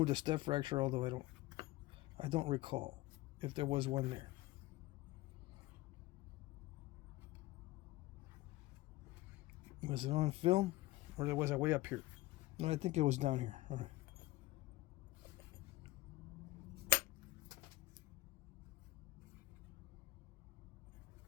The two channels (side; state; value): right; quieter; 18.7 dB